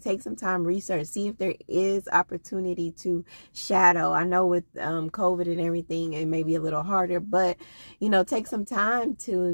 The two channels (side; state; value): both; inverted; correlation -1.00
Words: take some time, research, see if there is opportunity to shadow. I know with COVID and everything, it may be a little harder, but take some time